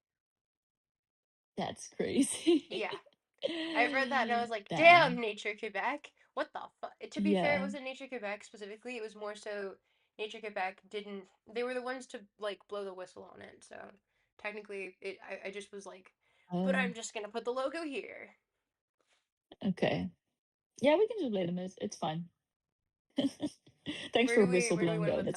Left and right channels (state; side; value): identical; both; correlation 1.00